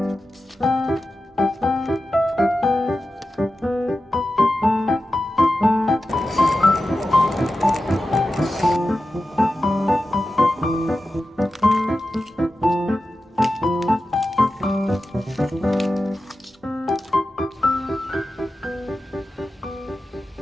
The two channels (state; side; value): normal; both; correlation 0.92